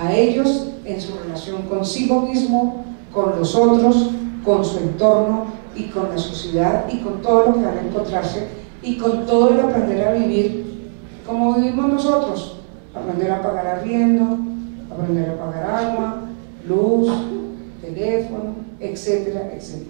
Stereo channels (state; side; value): silent; left; 65 dB below the other